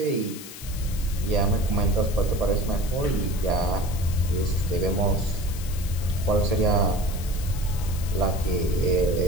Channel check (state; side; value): noise; left; hiss, 14 dB below the sound